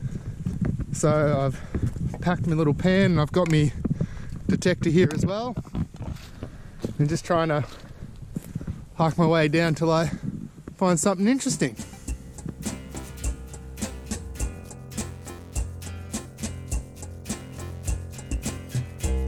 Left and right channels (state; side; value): identical; both; correlation 1.00